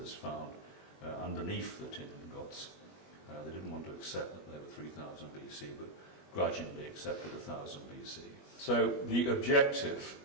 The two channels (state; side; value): late; right; 21 ms